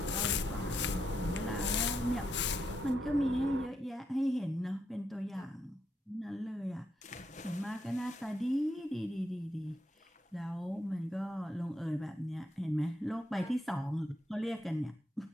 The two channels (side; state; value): both; normal; correlation 0.80